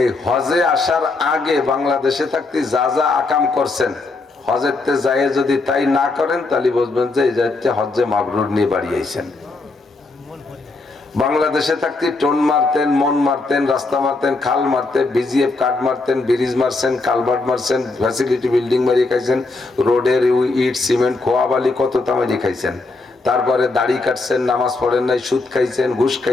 হজে আসার আগে বাংলাদেশে থাকতে যা যা আকাম করছেন, হজেরতে যায় যদি তাই না করেন, তাহলে বুঝবেন যে এই যাচ্ছে হজ্জে মাবরুর নিয়ে বাড়ি আইছেন। বাংলাদেশে থাকতে টোন মারতেন, মন মারতেন, রাস্তা মারতেন, খাল মারতেন, বিজিএফ কাঠ মারতেন, ব্রিজ মারছেন, কালভার্ট মারছেন, ফ্যাসিলিটি বিল্ডিং মারিয়ে খাইছেন, রোডের ইট সিমেন্ট খোয়া বালি কত তামারি খাইছেন। তারপরে দাড়ি কাটছেন, নামাজ পড়েন নাই, সুদ খাইছেন, ঘুষ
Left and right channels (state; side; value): quieter; right; 3.4 dB